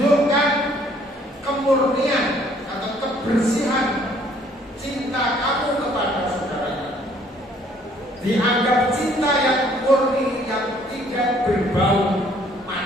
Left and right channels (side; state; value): both; normal; correlation 0.61